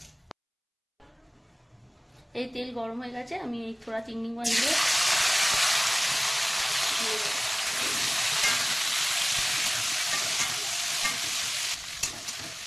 এই তেল গরম হয়ে গেছে আমি এই থোড়া চিংড়ি মাছ দিয়ে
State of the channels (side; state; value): both; identical; correlation 1.00